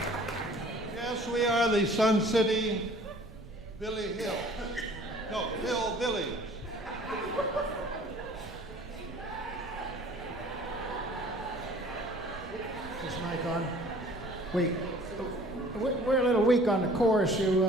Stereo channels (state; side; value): noise; right; rumble, 20 dB below the sound